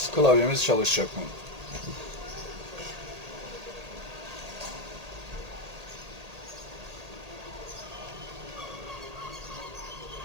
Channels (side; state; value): left; late; 1.8 ms